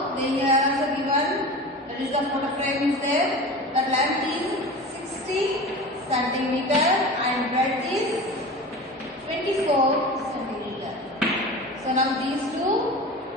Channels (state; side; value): normal; both; correlation 0.33